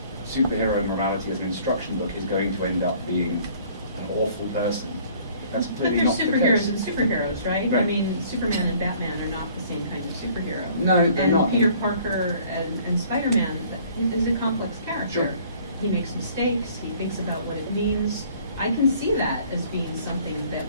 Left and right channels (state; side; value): inverted; both; correlation -0.55